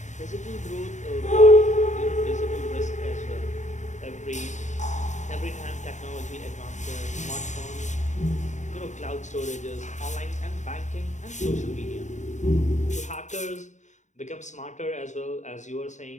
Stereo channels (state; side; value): late; right; 0.35 ms